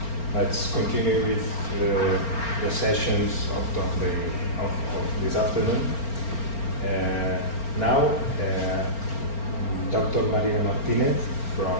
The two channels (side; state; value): right; late; 4.4 ms